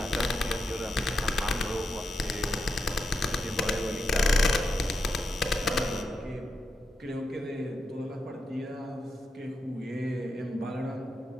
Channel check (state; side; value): normal; both; correlation 0.86